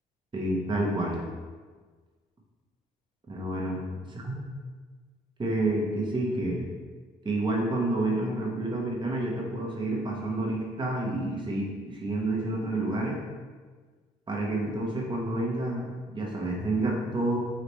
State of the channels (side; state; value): both; normal; correlation 0.65